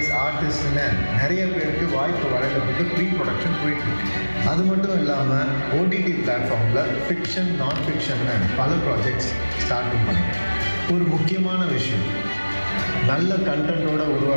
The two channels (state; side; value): inverted; both; correlation -1.00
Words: ஆர்டிஸ்ட்னு நிறைய பேருக்கு வாய்ப்பு வழங்கப்பட்டு ப்ரீ ப்ரொடக்ஷன் போயிட்டுருக்கு. அது மட்டும் இல்லாமல் ஓடிடி பிளாட்ஃபார்மில் ஃபிக்ஷன், நான் ஃபிக்ஷன்னு பல ப்ராஜெக்ட்ஸ் ஸ்டார்ட்டும் பண்ணிட்டேன். ஒரு முக்கியமான விஷயம், நல்ல கண்டென்ட்டோடு